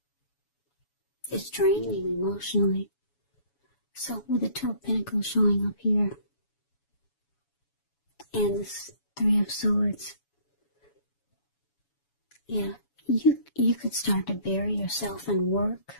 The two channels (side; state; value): right; late; 7.1 ms